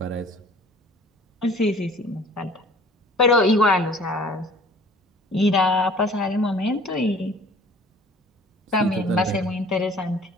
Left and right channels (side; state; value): both; normal; correlation 0.50